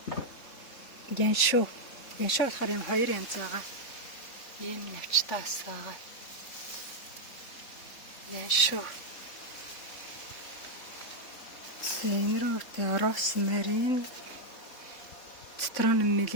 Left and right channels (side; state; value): right; late; 3.7 ms